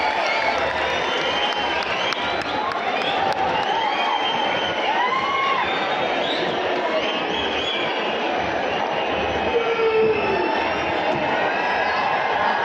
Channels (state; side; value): identical; both; correlation 1.00